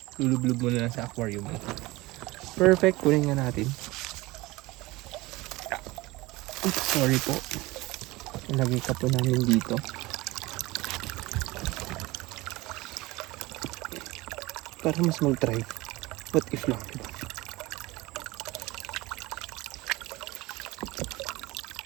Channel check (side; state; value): left; quieter; 20.8 dB